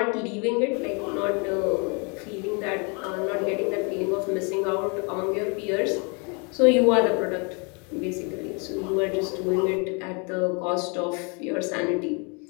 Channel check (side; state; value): right; quieter; 34.0 dB